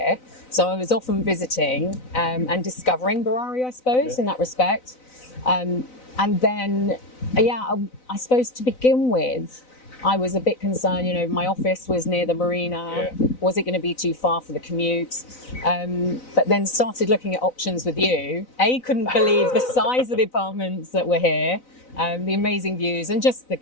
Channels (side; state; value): right; late; 4.0 ms